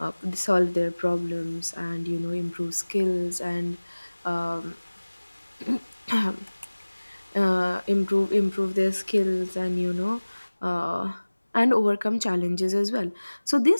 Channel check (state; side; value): inverted; both; correlation -1.00